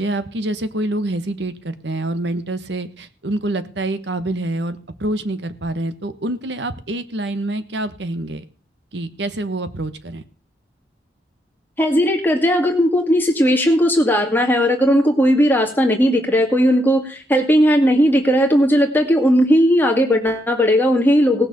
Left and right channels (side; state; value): both; normal; correlation 0.76